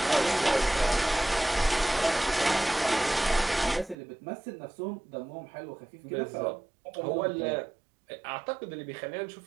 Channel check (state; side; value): drops out; left; at 4.0 s